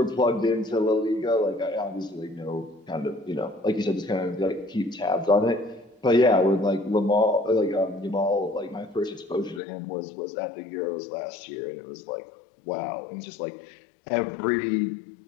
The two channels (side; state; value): right; drops out; at 9.6 s